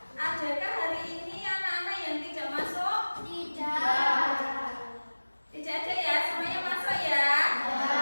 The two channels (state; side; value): inverted; both; correlation -1.00